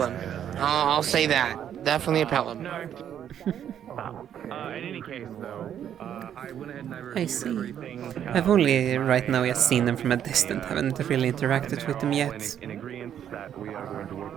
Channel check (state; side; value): quieter; left; 9.6 dB